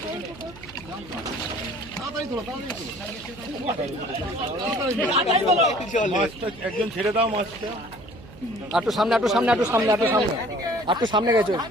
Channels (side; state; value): right; noise; hum, 19 dB below the sound